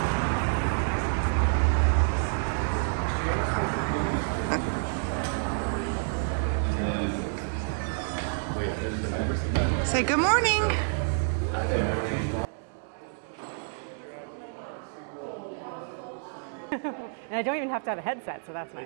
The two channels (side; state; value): left; silent; 59 dB below the other